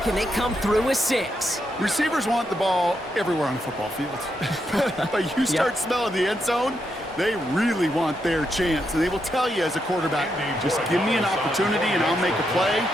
and they come through with 6. Receivers want the ball everywhere on the football field. But you start smelling the end zone, they really want their chance. And they will tell you as a quarterback, just give me an opportunity and I'll make a play.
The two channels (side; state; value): both; normal; correlation 0.82